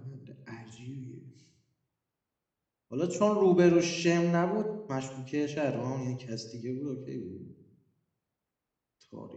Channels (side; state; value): both; identical; correlation 1.00